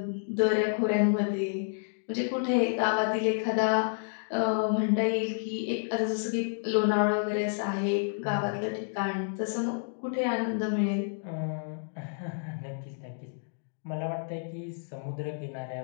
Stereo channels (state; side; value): silent; right; digital silence